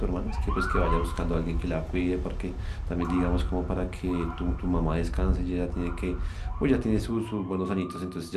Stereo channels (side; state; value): both; identical; correlation 1.00